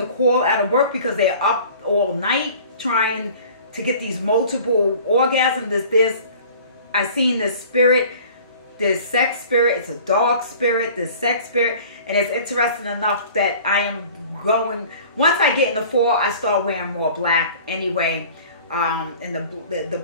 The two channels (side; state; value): both; inverted; correlation -0.46